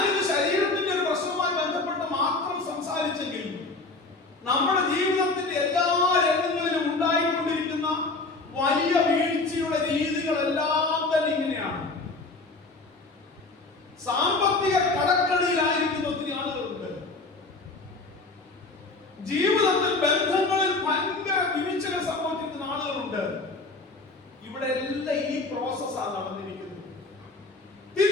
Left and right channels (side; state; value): right; quieter; 3.5 dB